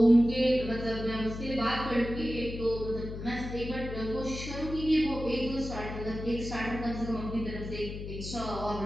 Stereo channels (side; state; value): left; noise; hum, 8 dB below the sound